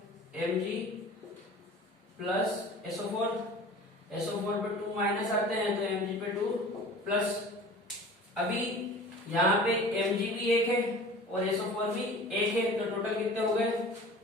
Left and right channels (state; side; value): normal; both; correlation 0.41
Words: Mg प्लस SO4, SO4 पे 2 माइनस आते हैं तो Mg पे 2 प्लस। अभी यहाँ पे Mg भी एक है और SO4 भी एक है, तो टोटल कितने हो गए